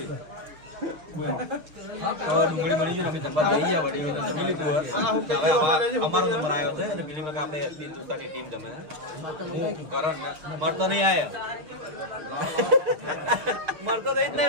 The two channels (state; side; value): late; left; 6.4 ms